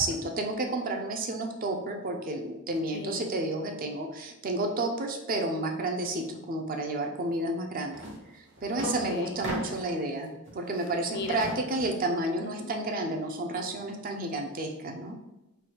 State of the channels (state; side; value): normal; both; correlation 0.15